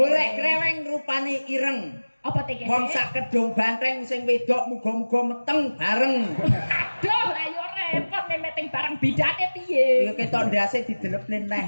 kreweng rupane ireng. Apa teke? Wong sak Kedung Banteng sing wedok muga-muga meteng bareng. Aduh, ayo repot memeteng barang bidane piye? Ya ketok ndase didelepne neh.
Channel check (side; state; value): both; inverted; correlation -1.00